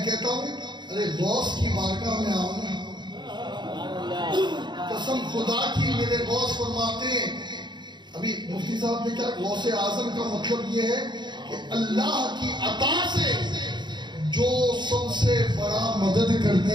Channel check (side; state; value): left; late; 0.22 ms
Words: کہتا ہوں ارے غوث کی بارگاہ میں آؤ نا۔ قسم خدا کی میرے غوث فرماتے ہیں، ابھی مفتی صاحب نے کیا، غوث اعظم کا مطلب یہ ہے کہ اللہ کی عطا سے جو سب سے بڑا مدد